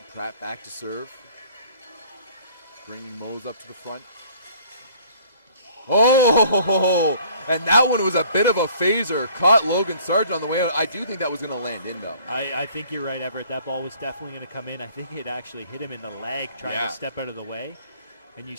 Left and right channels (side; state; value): both; inverted; correlation -0.55